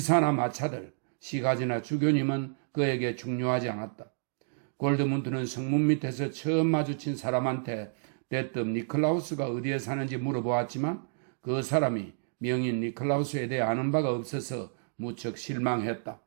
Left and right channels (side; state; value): left; silent; digital silence